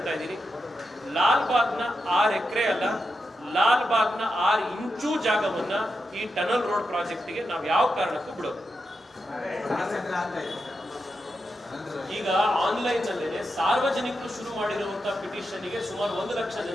ಇದ್ದೀನಿ, ಲಾಲ್ಬಾಗ್ನ 6 ಎಕರೆ ಅಲ್ಲ, ಲಾಲ್ಬಾಗ್ನ 6 ಇಂಚು ಜಾಗವನ್ನ ಈ ಟನಲ್ ರೋಡ್ ಪ್ರಾಜೆಕ್ಟ್ಗೆ ನಾವು ಯಾವ ಕಾರಣಕ್ಕೂ ಬಿಡೋದು. ಈಗ ಆನ್ಲೈನ್ ನಲ್ಲೇ ಸಾರ್ವಜನಿಕರು ಶುರು ಮಾಡಿರುವಂತಹ ಪಿಟಿಷನ್ಗೆ ಸುಮಾರು 1 ಲಕ್ಷ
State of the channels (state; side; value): normal; both; correlation 0.87